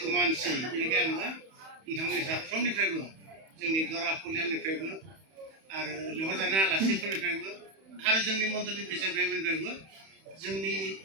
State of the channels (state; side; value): late; left; 31 ms